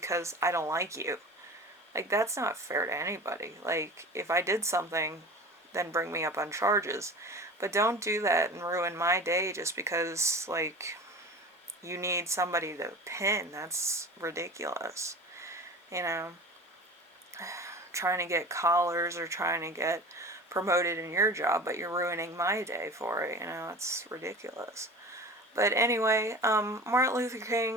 I don't like you. Like, that's not fair to anybody. Like, if I did something, then bring me up on charges. But don't do that and ruin my day just because, like, you need somebody to pin. That's ridiculous. You know, trying to get collars or trying to get promoted in your job, but you're ruining my day for it. You know, it's ridiculous. But anyway, Martin Luther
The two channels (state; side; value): normal; both; correlation 0.36